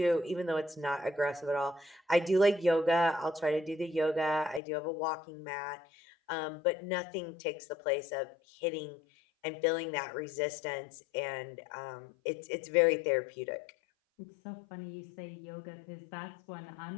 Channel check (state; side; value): drops out; right; at 4.6 s